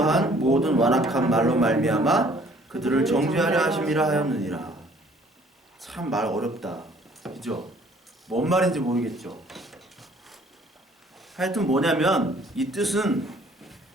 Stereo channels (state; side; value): normal; both; correlation 0.57